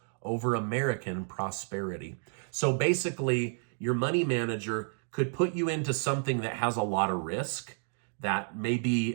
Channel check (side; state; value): left; silent; 57 dB below the other